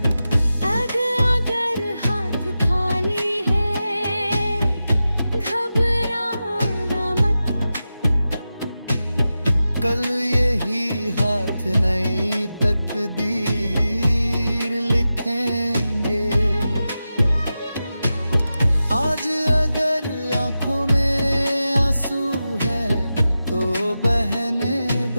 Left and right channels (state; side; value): inverted; both; correlation -0.92